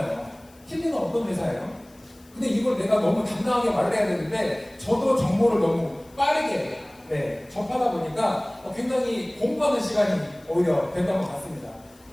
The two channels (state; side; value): noise; left; hiss, 28 dB below the sound